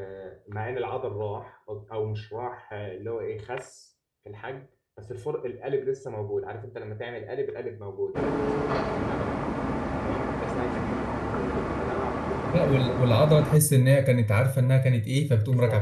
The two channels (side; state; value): both; identical; correlation 1.00